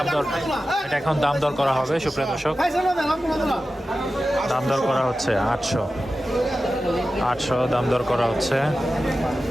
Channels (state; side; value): normal; both; correlation 0.94